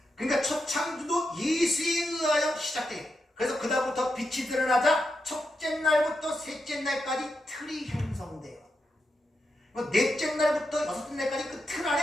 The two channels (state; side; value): normal; both; correlation 0.86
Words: 그러니까 첫 창조도 예수에 의하여 시작돼요. 그래서 그다음부터 빛이 드러나자 첫째 날부터 셋째 날까지 틀이 형성돼요. 넷째 날부터 여섯째 날까지 그 틀